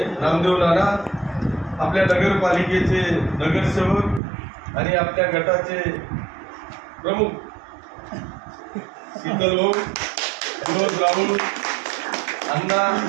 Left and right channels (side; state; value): left; drops out; at 4.2 s